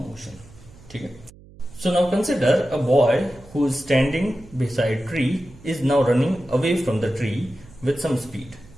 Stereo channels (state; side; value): noise; right; hum, 22 dB below the sound